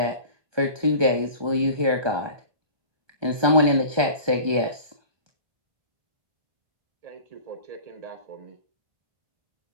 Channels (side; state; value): left; late; 1.2 ms